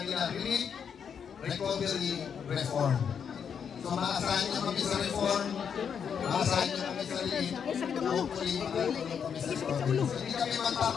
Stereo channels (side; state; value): right; quieter; 7.3 dB